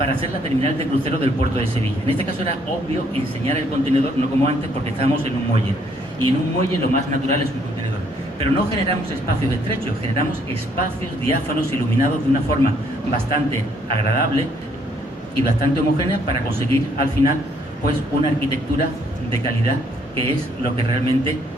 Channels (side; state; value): both; normal; correlation 0.67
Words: hacer la terminal de crucero del puerto de Sevilla. En este caso era obvio enseñar el contenedor, no como antes, porque estábamos en un muelle. Y en un muelle lo más natural es un contenedor. Pero no generamos espacios estrechos, generamos espacios diáfanos, iluminados de una forma bastante agradable y bastante homogénea para conseguir al final pues una arquitectura de calidad que es lo que realmente